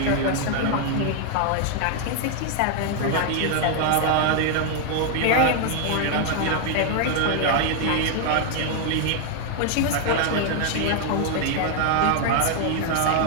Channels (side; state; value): both; different; correlation 0.00